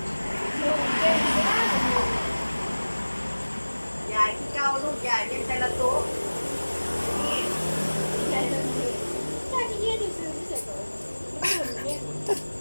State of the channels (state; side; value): inverted; both; correlation -1.00